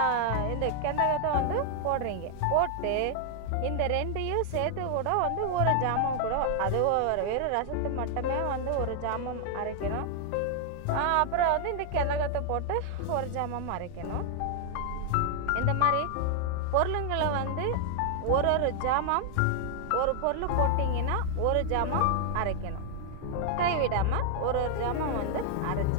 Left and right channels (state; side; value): different; both; correlation 0.00